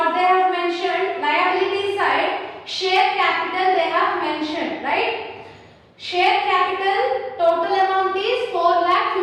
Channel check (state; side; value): identical; both; correlation 1.00